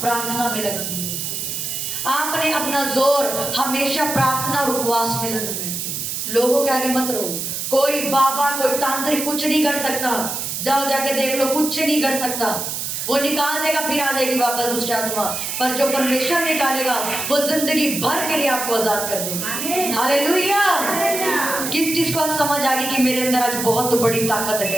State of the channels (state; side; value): noise; right; hiss, 4 dB below the sound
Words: प्रार्थना में लगानी है। आपने अपना जोर हमेशा प्रार्थना और उपवास में लगाना है। लोगों के आगे मत रहो। कोई बाबा कोई तांत्रिक कुछ नहीं कर सकता। जाओ जाके देख लो, कुछ नहीं कर सकता। वो निकाल देगा फिर आ जाएगी वापस दुष्ट आत्मा, पर जो परमेश्वर निकालेगा वो जिंदगी भर के लिए आपको आजाद कर देगा। हालेलुया। किस चीज को आज समझ आ गई कि मेरे अंदर आज बहुत बड़ी ताकत